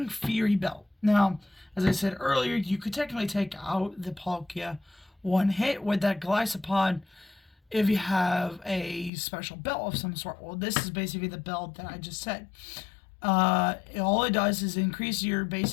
Fury Belt. Now, as I said earlier, you could technically take out the Palkia one hit with that Gliscopod if you have a special belt of some sort. Well, this is basically the belt that I just said. All it does is increase your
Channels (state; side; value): drops out; right; at 9.1 s